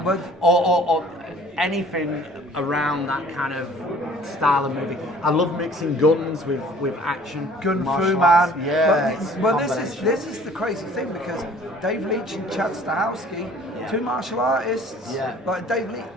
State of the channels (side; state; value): both; normal; correlation 0.52